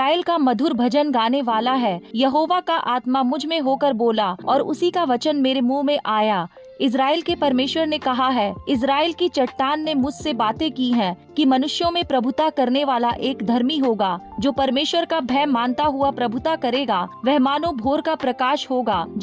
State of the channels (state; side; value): identical; both; correlation 1.00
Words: का मधुर भजन गाने वाला है। यहोवा का आत्मा मुझ में होकर बोला और उसी का वचन मेरे मुंह में आया। इज़राइल के परमेश्वर ने कहा है, इज़राइल की चट्टान ने मुझसे बातें की हैं कि मनुष्यों में प्रभुता करने वाला एक धर्मी होगा, जो परमेश्वर का भय मानता हुआ प्रभुता करेगा। वह मानो भोर का प्रकाश होगा